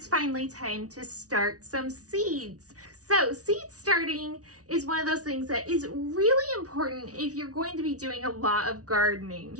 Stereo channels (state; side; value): late; left; 0.68 ms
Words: finally time to start some seeds. So seed starting is one of those things that is really important if you're going to be doing a lot of gardening.